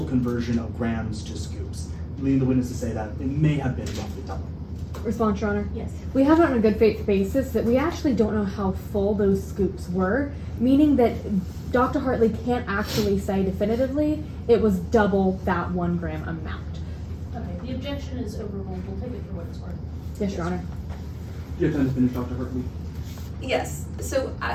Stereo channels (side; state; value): both; identical; correlation 1.00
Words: conversion of grams to scoops, leading the witness to say that it may have been roughly double. Response, Your Honor. Yes. We have it on a good faith basis that we actually don't know how full those scoops were, meaning that Dr. Hartley can't actually say definitively it was double that 1 gram amount. Okay, the objection is overruled. We'll take it for what it's worth. Yes, Your Honor. Do you have time to finish, Dr. Hartley? Yes, so